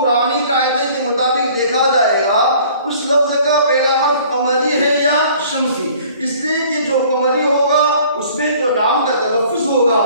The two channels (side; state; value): both; inverted; correlation -0.52